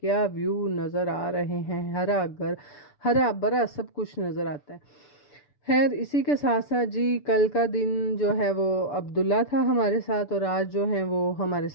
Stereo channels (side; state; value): right; late; 6.9 ms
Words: ویو نظر آ رہے ہیں، ہرا بھرا سب کچھ نظر آتا ہے۔ خیر اسی کے ساتھ ساتھ جی کل کا دن جو ہے وہ عبداللہ تھا ہمارے ساتھ، اور آج جو ہیں وہ ہمارے